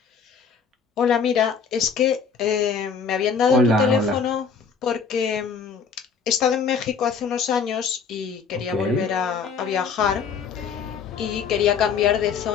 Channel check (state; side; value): quieter; right; 5.9 dB